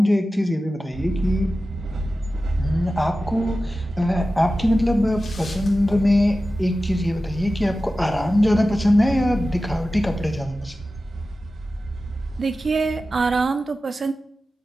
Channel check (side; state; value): both; normal; correlation 0.94